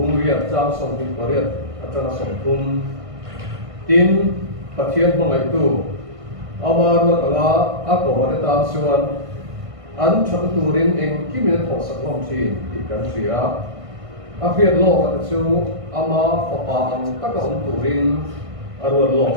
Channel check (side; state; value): left; late; 1.5 ms